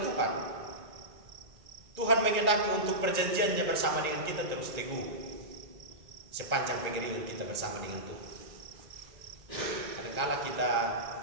Tuhan menghendaki untuk perjanjiannya bersama dengan kita terus teguh sepanjang pengiringan kita bersama dengan Tuhan. Kadang-kala kita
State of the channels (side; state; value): left; late; 1.9 ms